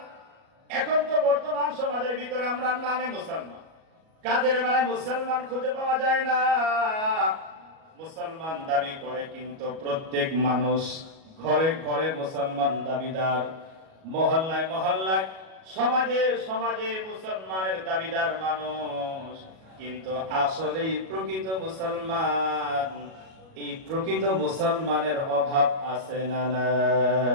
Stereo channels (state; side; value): late; left; 37 ms